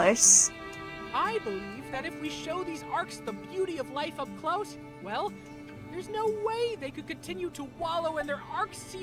I believe that if we show these arcs the beauty of life up close, well, there's no way they could continue to wallow in their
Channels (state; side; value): identical; both; correlation 1.00